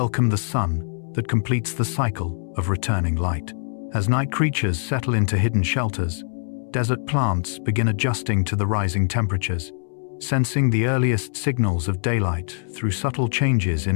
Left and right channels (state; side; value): silent; right; 63 dB below the other